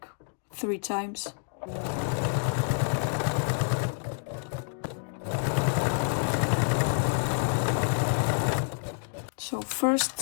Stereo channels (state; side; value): silent; right; digital silence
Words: 3 times. So first